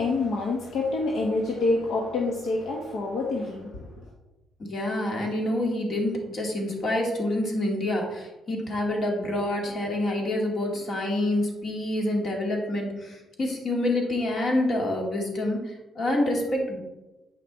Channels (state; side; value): normal; both; correlation 0.75